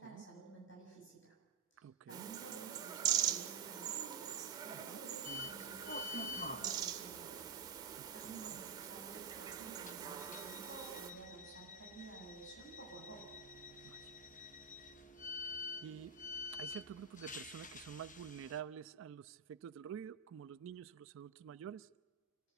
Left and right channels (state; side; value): quieter; left; 5.7 dB